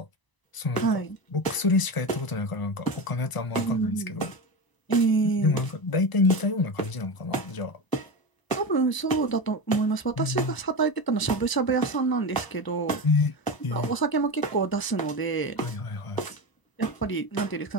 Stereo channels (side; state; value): right; late; 1.0 ms